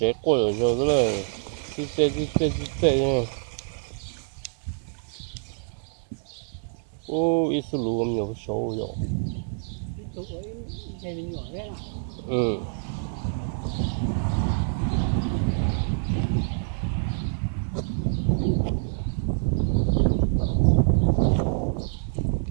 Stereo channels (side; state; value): left; silent; 58 dB below the other